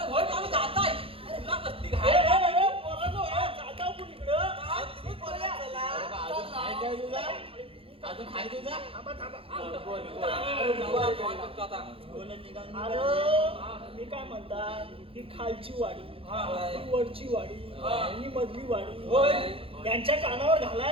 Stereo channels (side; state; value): left; late; 0.27 ms